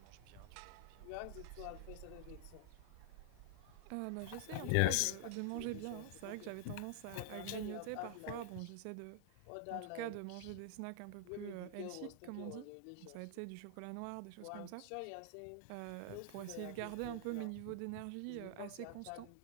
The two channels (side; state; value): both; different; correlation -0.01